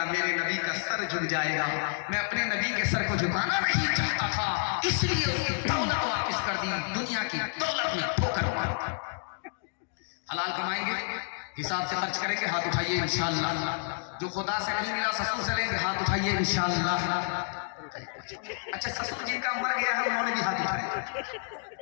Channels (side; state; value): right; silent; digital silence